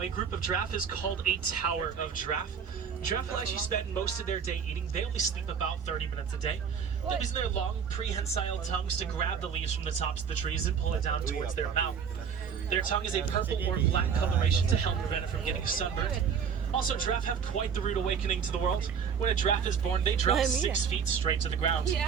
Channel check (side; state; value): left; quieter; 6.9 dB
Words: a group of giraffe is called a tower of giraffe. Giraffe will actually spend most of their day eating. They only sleep about 30 minutes a day. They're using their long, prehensile tongues to grab the leaves from the tops of the trees and pull it down towards their mouth. Their tongue is a purple or black coloration to help prevent it from getting sunburned. Also, giraffe have quite the rude awakening to the world. When a giraffe is born, they drop 6 feet straight to the ground.